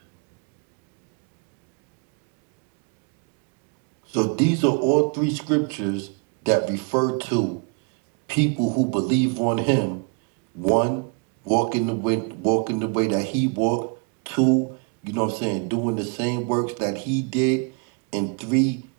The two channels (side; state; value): left; quieter; 36.2 dB